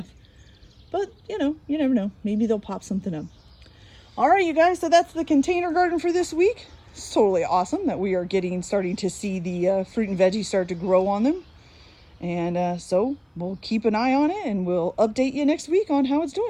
But, you know, you never know. Maybe they'll pop something up. All right, you guys. So that's the container garden for this week. It's totally awesome that we are starting to see the fruit and veggies start to grow on them. And so we'll keep an eye on it and we'll update you next week on how it's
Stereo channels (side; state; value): both; identical; correlation 1.00